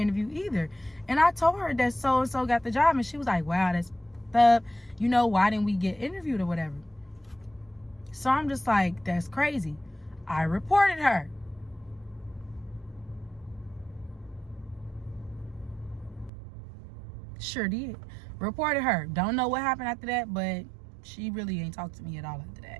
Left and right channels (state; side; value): drops out; left; at 16.3 s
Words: either. And I told her that so-and-so got the job, and she was like, wow, that's up. You know, why didn't we get interviewed or whatever? So I'm just like, that's crazy. I reported her. Sure did. Reported her. Don't know what happened after that, but she really ain't talked to me at all after